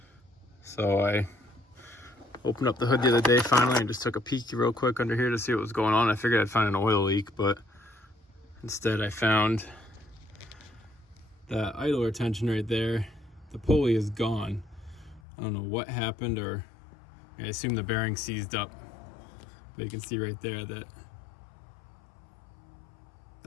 So I opened up the hood the other day finally and just took a peek real quick under here to see what was going on. I figured I'd find an oil leak, but instead I found that idler retention right there. The pulley is gone. I don't know what happened, or I assume the bearing seized up. But you can see right there that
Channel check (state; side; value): drops out; right; at 15.2 s